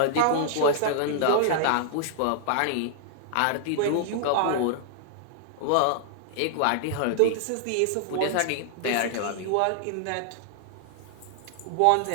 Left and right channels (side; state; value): both; different; correlation 0.00